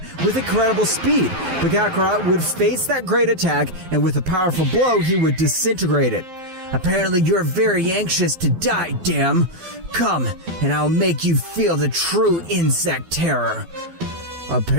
with incredible speed. But Kakarot would face that great attack, and with a powerful blow, he would disintegrate it. Apparently you're very anxious to die, damn. Come, and I'll make you feel the true insect terror.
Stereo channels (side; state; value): left; late; 12 ms